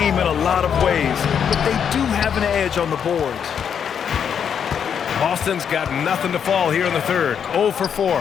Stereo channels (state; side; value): quieter; right; 7.8 dB